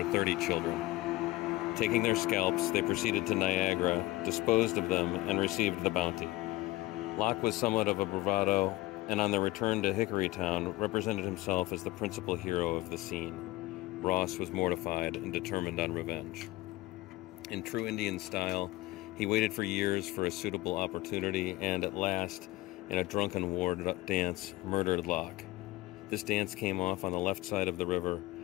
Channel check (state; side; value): quieter; right; 18.8 dB